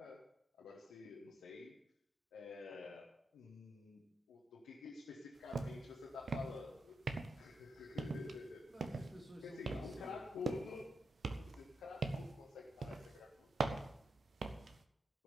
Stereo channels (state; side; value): normal; both; correlation 0.86